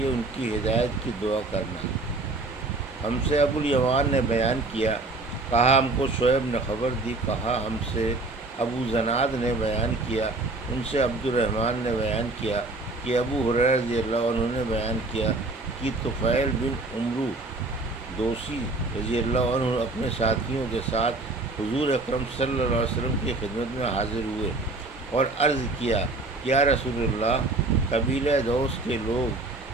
ان کی ہدایت کی دعا کرنا۔ ہم سے ابو الیمان نے بیان کیا، کہا ہم کو شعیب نے خبر دی، کہا ہم سے ابو زناد نے بیان کیا، ان سے عبد الرحمن نے بیان کیا کہ ابو ہریرہ رضی اللہ عنہ نے بیان کیا کہ طفیل بن عمرو دوسی رضی اللہ عنہ اپنے ساتھیوں کے ساتھ حضور اکرم صلی اللہ علیہ وسلم کی خدمت میں حاضر ہوئے اور عرض کیا، یا رسول اللہ، قبیلہ دوس کے لوگ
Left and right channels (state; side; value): quieter; left; 3.1 dB